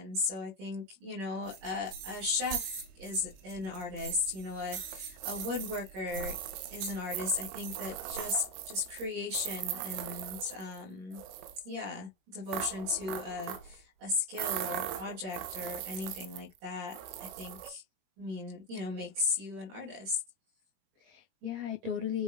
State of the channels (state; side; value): late; left; 21 ms